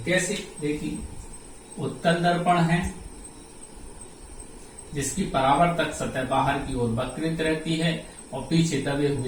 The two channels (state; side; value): identical; both; correlation 1.00